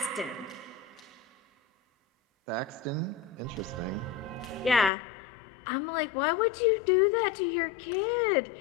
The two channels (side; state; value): right; drops out; at 4.9 s